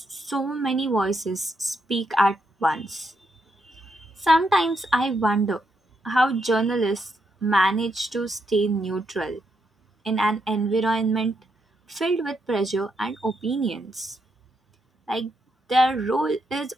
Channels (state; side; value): normal; both; correlation 0.80